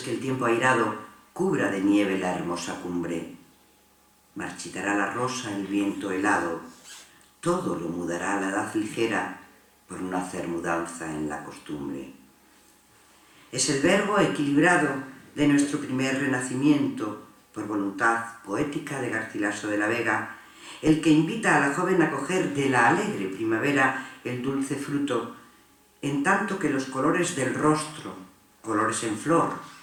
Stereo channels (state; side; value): identical; both; correlation 1.00